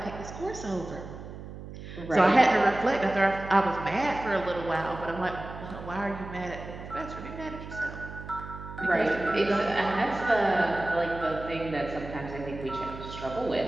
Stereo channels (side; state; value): right; noise; hum, 12 dB below the sound